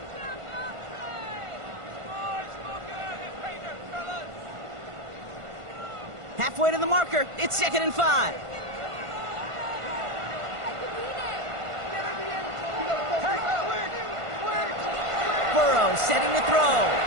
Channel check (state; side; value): late; left; 1.5 ms